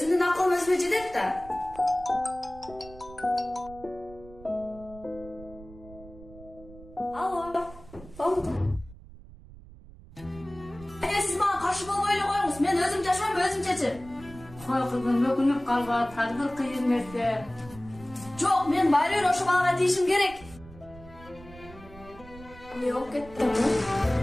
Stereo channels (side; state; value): right; noise; rumble, 19 dB below the sound